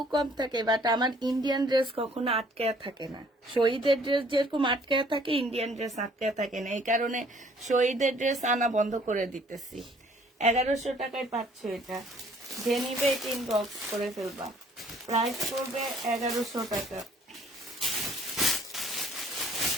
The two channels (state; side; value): normal; both; correlation 0.59